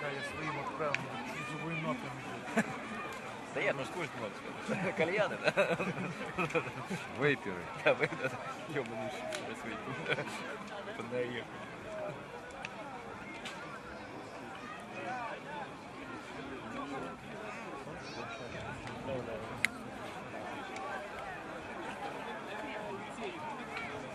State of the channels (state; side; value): identical; both; correlation 1.00